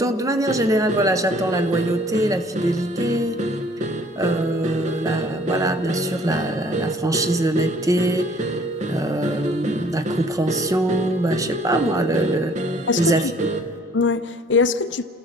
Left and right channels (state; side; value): normal; both; correlation 0.56